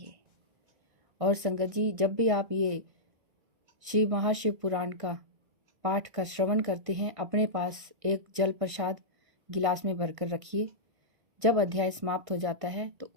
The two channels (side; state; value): left; late; 1.6 ms